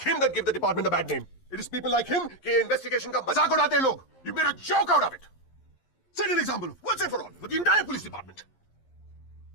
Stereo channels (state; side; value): late; right; 11 ms